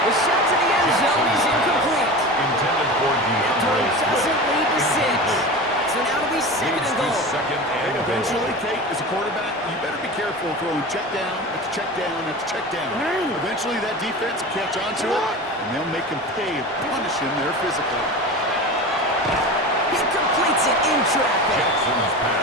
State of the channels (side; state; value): both; normal; correlation 0.30